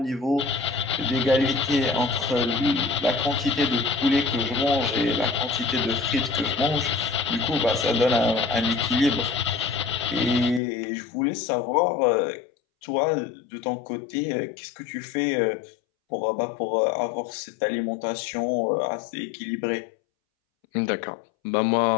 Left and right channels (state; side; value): drops out; right; at 10.6 s